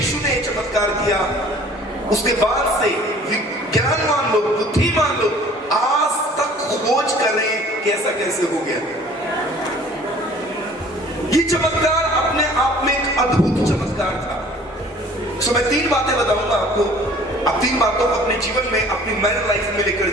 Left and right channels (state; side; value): normal; both; correlation 0.51